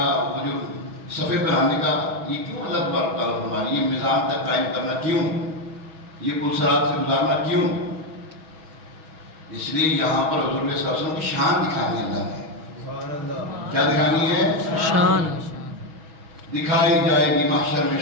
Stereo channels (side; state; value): left; late; 6.2 ms